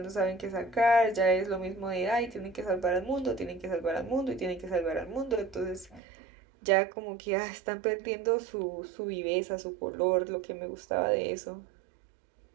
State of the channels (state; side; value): drops out; left; at 6.0 s